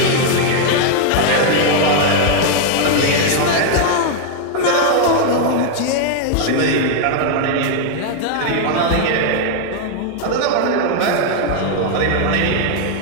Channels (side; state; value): both; different; correlation 0.00